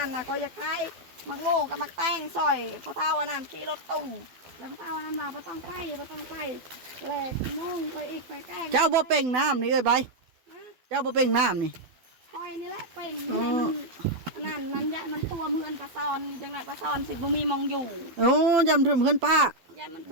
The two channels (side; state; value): left; late; 12 ms